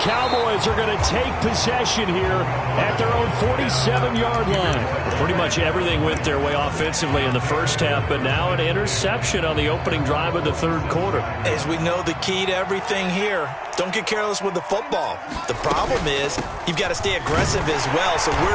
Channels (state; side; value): identical; both; correlation 1.00